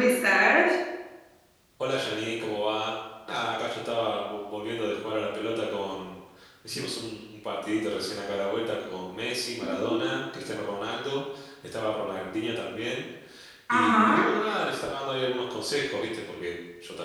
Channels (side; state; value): both; identical; correlation 1.00